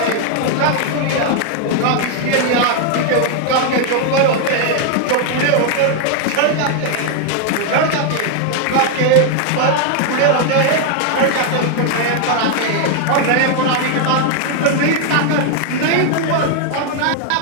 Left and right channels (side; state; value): both; different; correlation 0.00